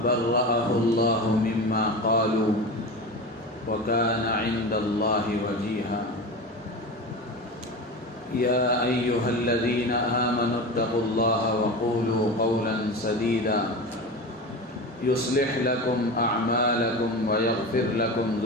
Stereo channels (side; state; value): both; normal; correlation 0.27